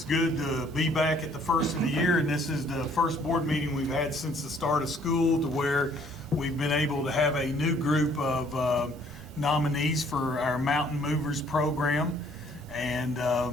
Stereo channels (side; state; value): both; normal; correlation 0.61